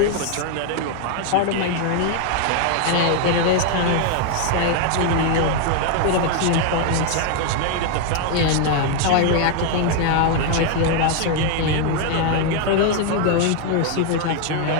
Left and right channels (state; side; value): different; both; correlation 0.00